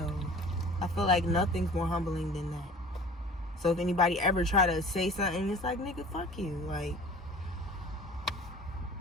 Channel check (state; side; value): normal; both; correlation 0.44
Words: I feel like nothing's more humbling than that. So if anybody ever try to say something, it's like, nigga, fuck you. Like